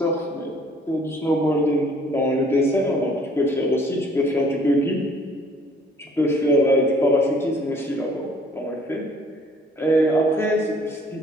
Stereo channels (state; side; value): normal; both; correlation 0.58